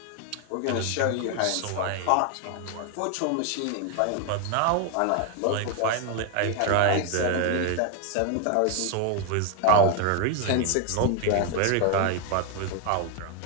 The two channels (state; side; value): different; both; correlation 0.00